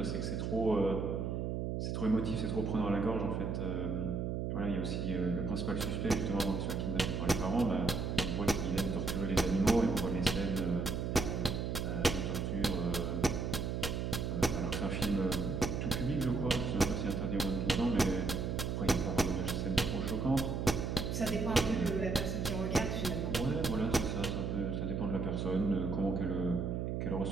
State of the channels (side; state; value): right; noise; hum, 1 dB below the sound